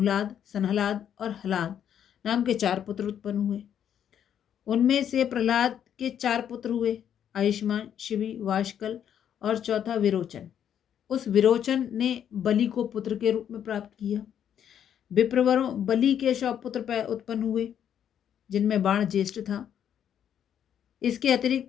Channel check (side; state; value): right; quieter; 9.3 dB